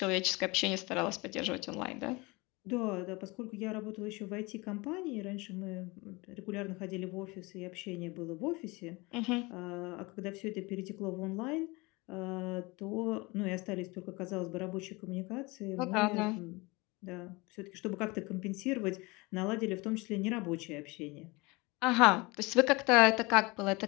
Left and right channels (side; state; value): right; quieter; 24.8 dB